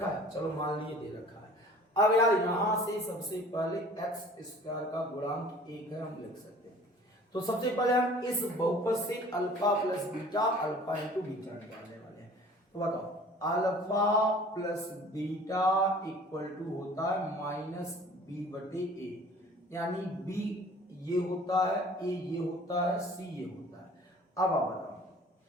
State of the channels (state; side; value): normal; both; correlation 0.48